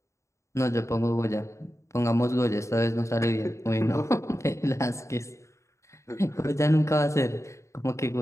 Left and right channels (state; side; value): late; right; 0.14 ms